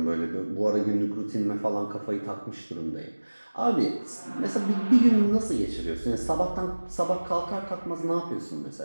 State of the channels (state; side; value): inverted; both; correlation -1.00